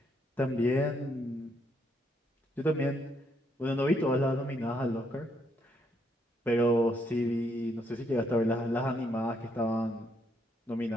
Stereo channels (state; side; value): normal; both; correlation 0.74